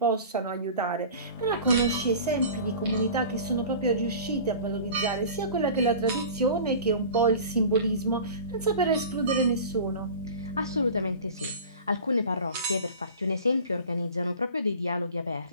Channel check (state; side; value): inverted; both; correlation -0.38